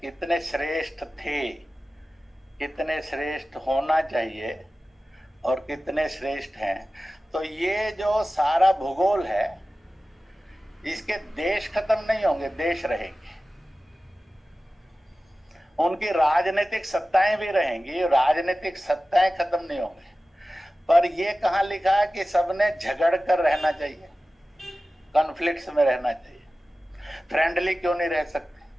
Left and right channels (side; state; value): both; normal; correlation 0.95